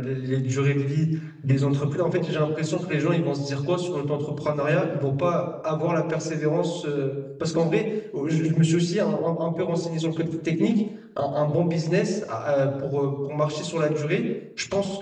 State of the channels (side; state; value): both; identical; correlation 1.00